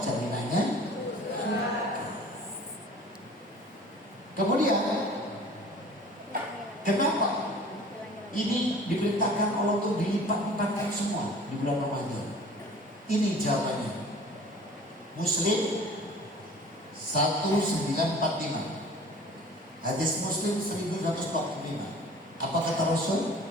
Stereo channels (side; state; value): both; normal; correlation 0.46